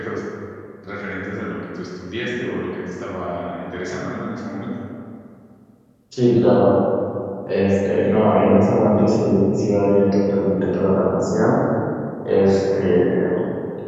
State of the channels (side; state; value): both; identical; correlation 1.00